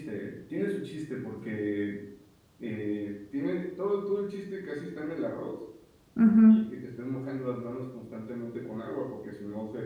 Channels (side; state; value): both; identical; correlation 1.00